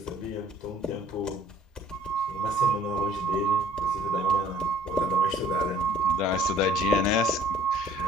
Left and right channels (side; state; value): both; normal; correlation 0.54